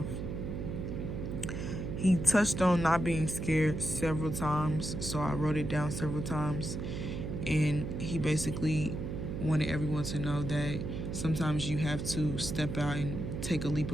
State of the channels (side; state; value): right; noise; hum, 4 dB below the sound